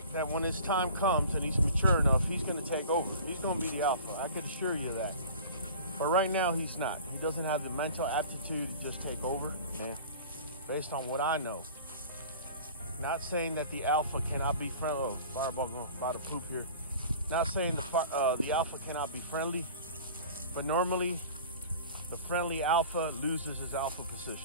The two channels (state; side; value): inverted; both; correlation -0.42